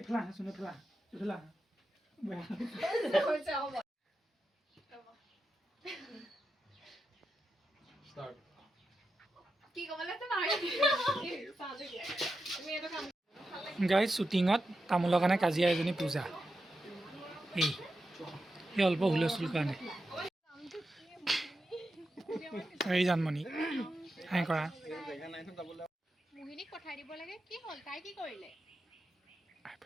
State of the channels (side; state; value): both; normal; correlation 0.89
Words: আহাচোন এফালে আহা গাইজ শ্বুটিঙত তামোলৰ কাৰণে কাজিয়া এজনী পূজা এই অল্প হুলস্থুল কাৰণে এই জানমণি হাই কৰা মোহিনীক পঠাই দিব লাগে কি হ'ল তাই কি কৰিলে